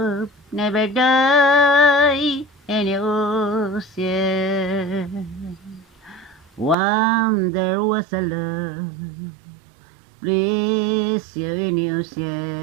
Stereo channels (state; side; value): drops out; left; at 6.8 s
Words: never die in the ocean. There was a love, please you in the